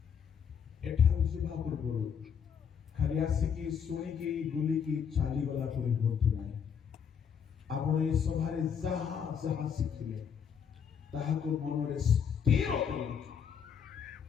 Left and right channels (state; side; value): quieter; right; 7.4 dB